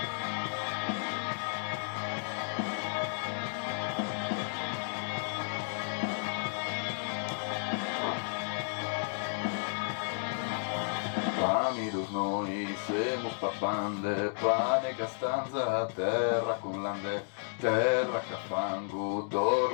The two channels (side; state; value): right; silent; digital silence